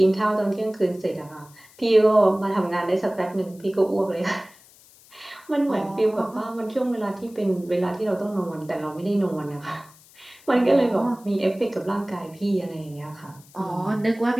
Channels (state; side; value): noise; left; hiss, 25 dB below the sound